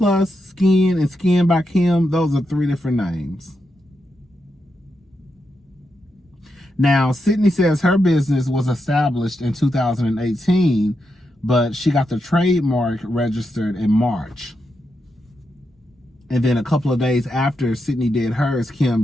Skin, and Skin by Kim, those are three different names. Now, Sydney says her business was established in 2018, but she got the trademark registered in March. And then a couple of days after Sydney did hers, Kim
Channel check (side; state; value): both; normal; correlation 0.85